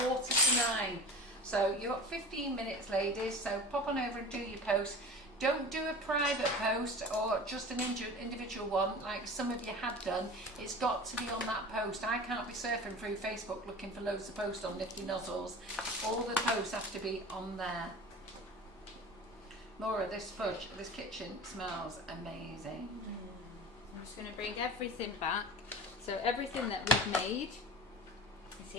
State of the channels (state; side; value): normal; both; correlation 0.35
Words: So you've got 15 minutes, ladies. So pop on over and do your post. Don't do a private post or just an individual one like some of you have done. It's got to be on that post. I can't be surfing through Facebook looking for loads of posts on Nifty Nozzles. All the posts have to be on there. Laura, this fudge, this kitchen smells amazing. I'm just going to bring everything back. So everything that we've made is